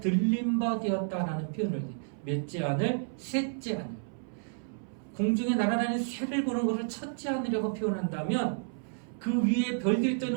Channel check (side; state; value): left; silent; 57 dB below the other